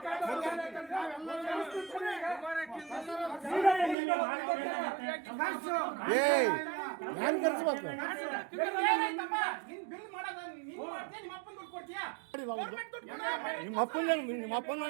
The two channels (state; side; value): drops out; left; at 4.0 s